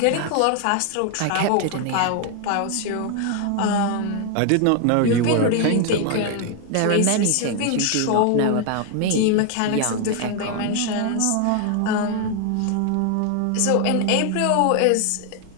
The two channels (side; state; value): both; different; correlation 0.00